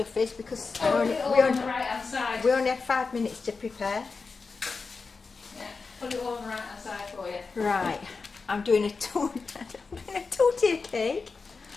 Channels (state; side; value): quieter; right; 4.5 dB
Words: is because Oh, we it all only, on the right hand side. we only have 5 minutes to prepare. Yeah, put it all on the right hand side for you. Right, I'm doing a tortilla cake.